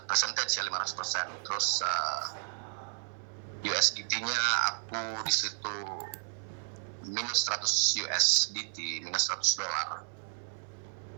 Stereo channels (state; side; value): silent; left; 56 dB below the other